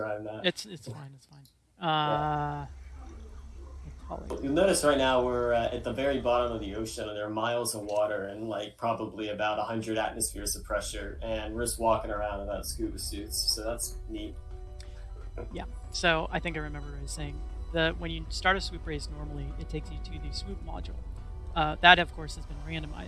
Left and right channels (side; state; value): both; identical; correlation 1.00